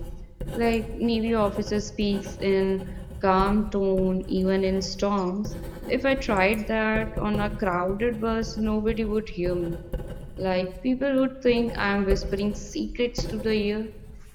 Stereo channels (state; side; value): identical; both; correlation 1.00